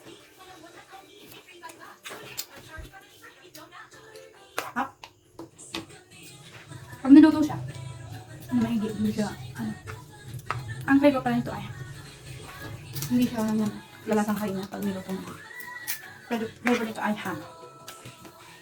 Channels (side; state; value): both; identical; correlation 1.00